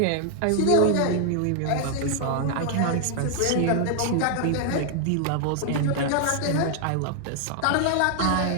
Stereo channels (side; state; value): both; different; correlation 0.00